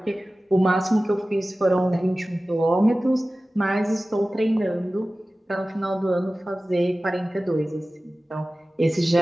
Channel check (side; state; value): both; normal; correlation 0.96